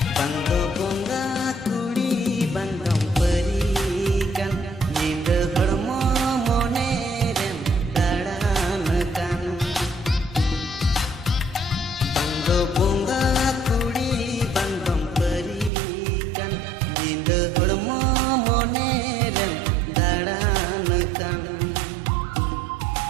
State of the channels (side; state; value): left; drops out; at 15.7 s